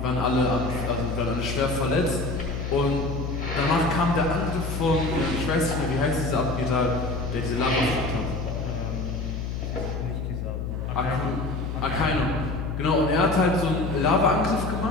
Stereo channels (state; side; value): noise; left; hum, 4 dB below the sound